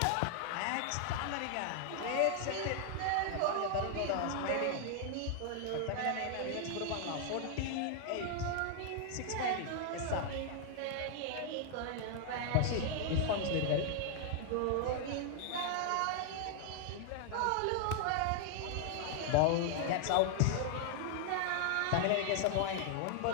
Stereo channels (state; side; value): different; both; correlation 0.00